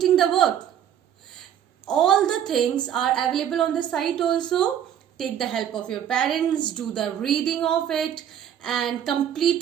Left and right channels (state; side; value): quieter; left; 9.8 dB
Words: the work? All the things are available on the site also. Take the help of your parents, do the reading of it and